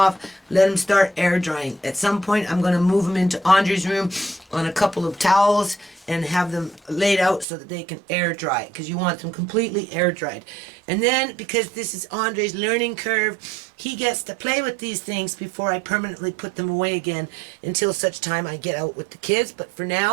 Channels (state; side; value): drops out; left; at 7.5 s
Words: Let them start air drying. At some point, I'm going to move them into Andre's room on a couple of towels and have them laid out so that they can air dry. Because you want them completely air dried. And then, because this is Andre's learning curve, he gets to play with these things before I permanently put them away again until such time I get out with the kids. But for